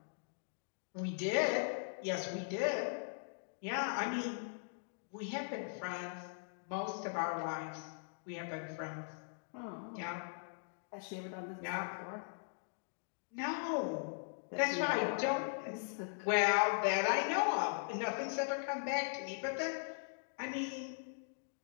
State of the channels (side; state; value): right; silent; digital silence